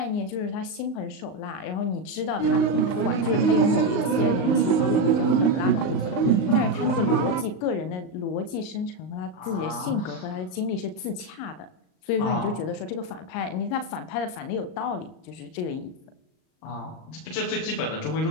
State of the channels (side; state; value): right; late; 38 ms